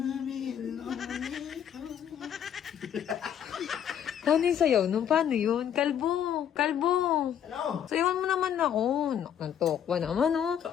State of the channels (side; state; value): right; quieter; 9.2 dB